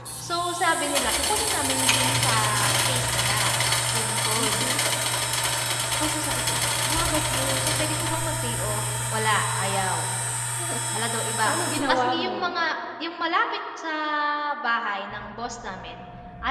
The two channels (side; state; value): both; identical; correlation 1.00